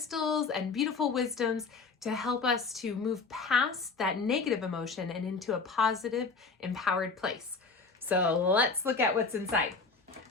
and beautiful wisdoms to help us to move past that negative emotion and into a positive, empowered place. So let's look at what's inside.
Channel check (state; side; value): quieter; right; 4.4 dB